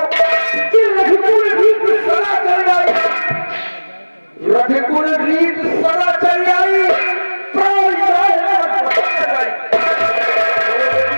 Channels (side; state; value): both; inverted; correlation -1.00